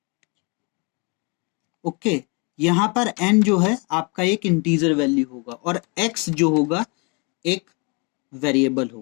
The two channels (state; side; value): quieter; right; 32.2 dB